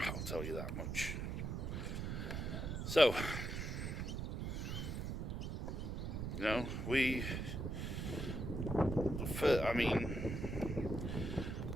I'll tell you that much. So,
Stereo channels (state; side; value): noise; right; rumble, 3 dB below the sound